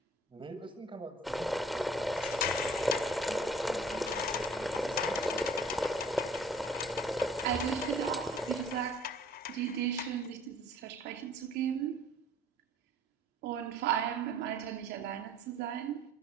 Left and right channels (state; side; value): normal; both; correlation 0.54